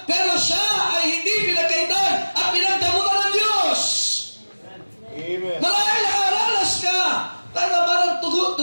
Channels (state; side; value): inverted; both; correlation -1.00